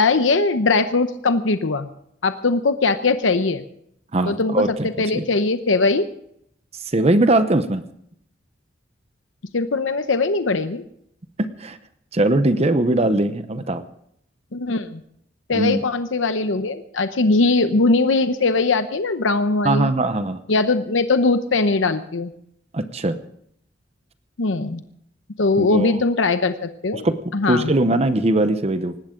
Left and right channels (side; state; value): both; normal; correlation 0.18